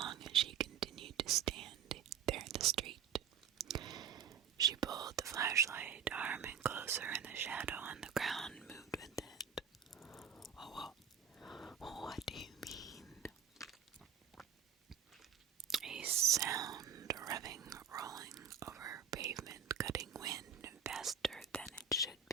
as she continued to stand there in the street. She pulled the flashlight arm in closer, and the shadow on the ground moved with it. "Oh, what do you mean?" A sound revving, rolling over pavement, cutting wind faster than it should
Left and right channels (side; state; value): left; quieter; 7.7 dB